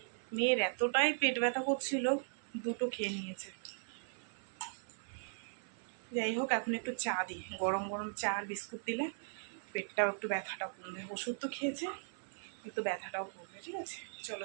মেয়ের এতটাই পেট ব্যথা করছিল, 2টো খেয়ে নিয়েছে। যাই হোক, এখন একটু চা দিই, গরম গরম চা আর বিস্কুট দিলে পেটটাও একটু ব্যথাটাও কমবে। ওষুধ তো খেয়েছে, একটু ব্যথাটাও কমবে। ঠিক আছে, চলো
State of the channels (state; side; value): silent; left; 52 dB below the other